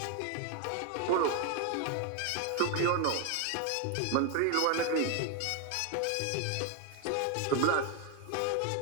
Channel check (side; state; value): both; different; correlation 0.01